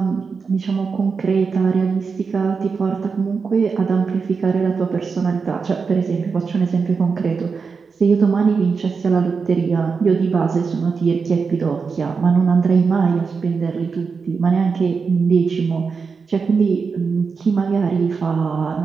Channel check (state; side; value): quieter; left; 5.2 dB